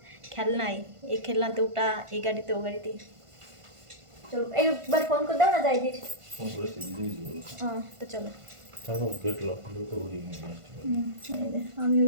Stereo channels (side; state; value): left; late; 1.5 ms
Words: খেলনাই, এই খেলনাতে ওটা, এই গাড়িতে ও গাড়িতে। চলো একবার ফোন করে দাও না, যাই দির। হ্যাঁ তো চলো, আমি